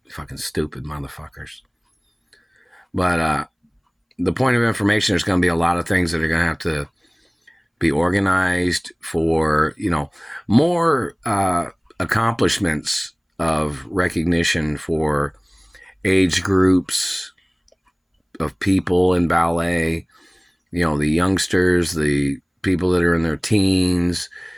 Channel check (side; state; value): both; identical; correlation 1.00